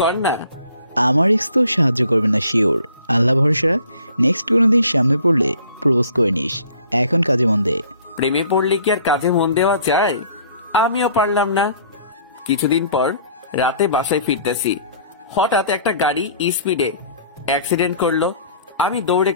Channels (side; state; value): both; inverted; correlation -0.54